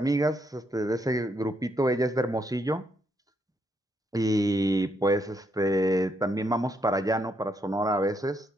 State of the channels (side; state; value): both; normal; correlation 0.76